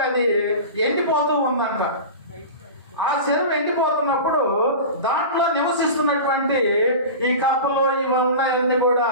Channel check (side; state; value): both; inverted; correlation -0.31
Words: అది ఎండిపోతూ ఉందంట. ఆ చెరువు ఎండిపోతున్నప్పుడు దాంట్లో నివసిస్తున్నటువంటి ఈ కప్పలు ఇవన్నీ అన్ని కూడా